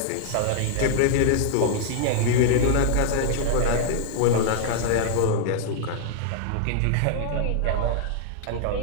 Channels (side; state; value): both; different; correlation -0.01